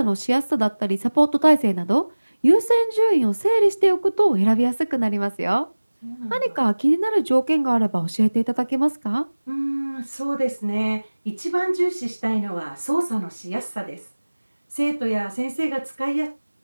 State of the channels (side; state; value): both; inverted; correlation -1.00